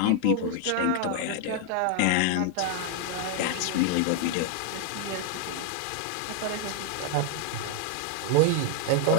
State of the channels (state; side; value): different; both; correlation 0.00